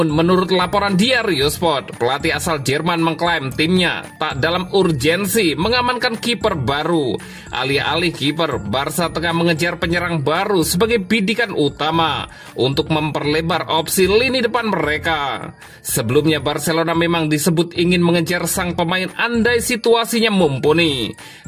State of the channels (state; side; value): identical; both; correlation 1.00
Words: menurut laporan Diario Sport, pelatih asal Jerman mengklaim timnya tak dalam urgensi mengamankan kiper baru. Alih-alih kiper, Barca tengah mengejar penyerang baru sebagai bidikan utama untuk memperlebar opsi lini depan mereka. Sebelumnya Barcelona memang disebut ingin mengejar sang pemain andai situasinya mumpuni.